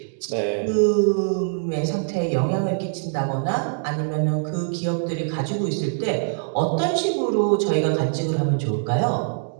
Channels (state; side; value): silent; left; digital silence